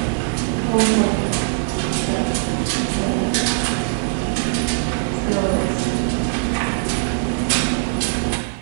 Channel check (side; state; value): left; silent; 65 dB below the other